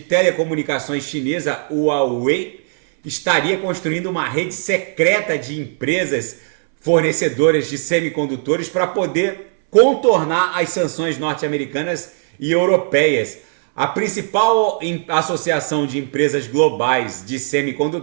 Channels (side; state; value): left; silent; 65 dB below the other